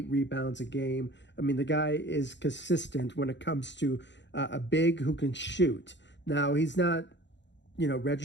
rebounds a game. I mean, the guy is consistent when it comes to a big who can shoot. Now, he's not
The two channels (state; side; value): late; right; 0.52 ms